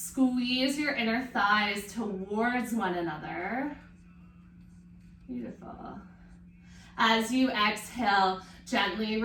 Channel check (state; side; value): identical; both; correlation 1.00